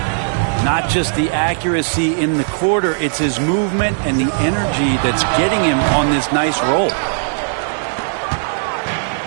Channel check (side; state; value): left; silent; digital silence